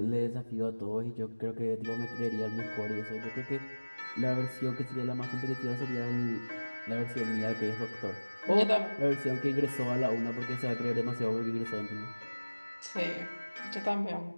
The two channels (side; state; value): both; inverted; correlation -1.00